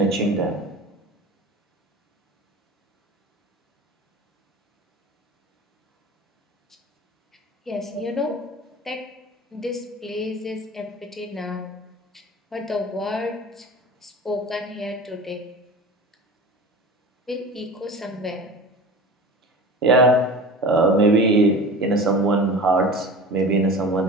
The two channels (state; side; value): normal; both; correlation 0.34